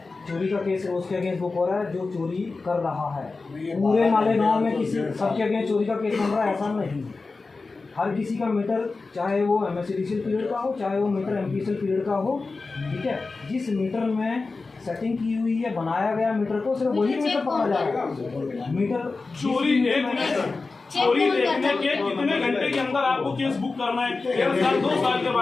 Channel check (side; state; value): right; quieter; 3.9 dB